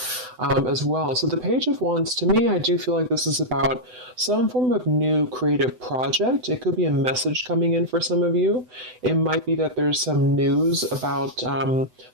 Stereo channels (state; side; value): late; left; 8.0 ms